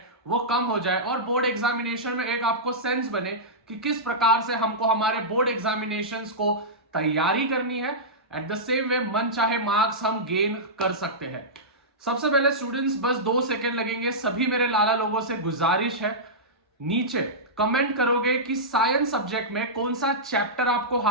वो कम हो जाए और बोर्ड एग्जामिनेशन में एक आपको सेंस बने कि किस प्रकार से हमको हमारे बोर्ड एग्जामिनेशंस को तैयारी करनी है। एट द सेम वे मन चाहे मार्क्स हम गेन कर सकते हैं। सबसे पहले स्टूडेंट्स, बस 2 सेकंड लगेंगे। सभी मेरे लाला लोगों से गुजारिश है, नीचे कमेंट करोगे कि साइंस सब्जेक्ट में कौन सा चैप्टर आपको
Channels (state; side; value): normal; both; correlation -0.14